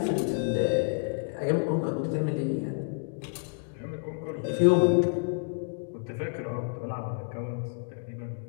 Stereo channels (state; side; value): silent; right; digital silence